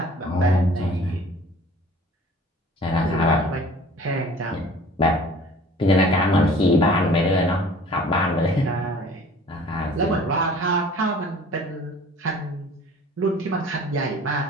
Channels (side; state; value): both; normal; correlation 0.48